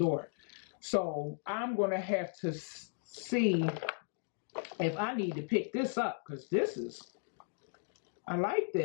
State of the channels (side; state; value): right; silent; 54 dB below the other